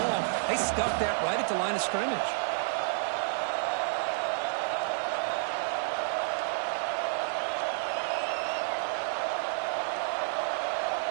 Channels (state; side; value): silent; left; 58 dB below the other